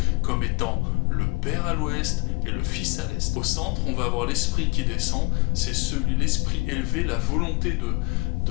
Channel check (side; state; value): right; quieter; 27.8 dB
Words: comme étant le Père à l'ouest et le Fils à l'est. Au centre, on va avoir l'esprit qui descend, c'est l'esprit élevé, la volonté